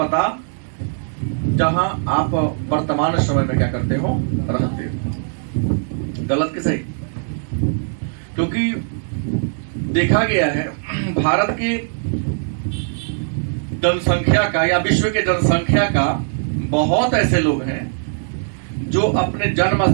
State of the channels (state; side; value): silent; left; digital silence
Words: जहां आप वर्तमान समय में क्या करते हो, रहते हो। गलत कि सही? क्योंकि देखा गया है भारत के जनसंख्या का या विश्व के जनसंख्या का बहुत ऐसे लोग हैं जो अपने जन्म